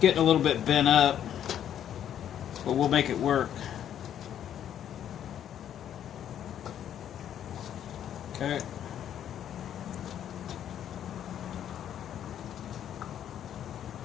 getting a little bit bent up, but we'll make it work. Okay.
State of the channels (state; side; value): quieter; right; 10.1 dB